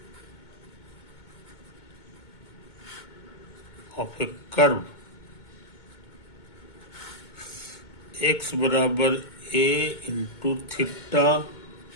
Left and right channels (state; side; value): late; right; 2.2 ms